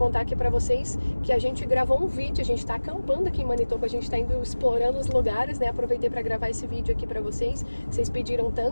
aqui pra vocês que a gente gravou um vídeo, a gente tá acampando aqui em Manitoba, a gente tá indo explorando os lugares, né? Aproveitei pra gravar esse vídeo aqui pra vocês pediram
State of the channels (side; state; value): both; inverted; correlation -1.00